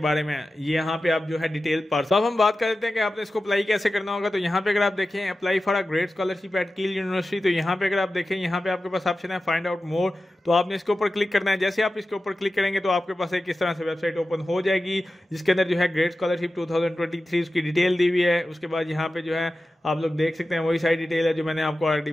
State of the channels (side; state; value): both; normal; correlation 0.94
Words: में, ये यहाँ पे आप जो है डिटेल पढ़। तो अब हम बात कर लेते हैं कि आपने इसको अप्लाई कैसे करना होगा। तो यहाँ पे अगर आप देखें apply for a great scholarship eight कील यूनिवर्सिटी, तो यहाँ पे अगर आप देखें यहाँ पे आपके पास ऑप्शन है फाइंड आउट मोर, तो आपने इसके ऊपर क्लिक करना है। जैसे आप इसके ऊपर क्लिक करेंगे तो आपके पास एक इस तरह से वेबसाइट ओपन हो जाएगी, जिसके अंदर जो है ग्रेट स्कॉलरशिप 2023 उसकी डिटेल दी हुई है। उसके बाद यहाँ पे जो है आप लोग देख सकते हैं वही सारी डिटेल है जो मैंने आपको ऑलरेडी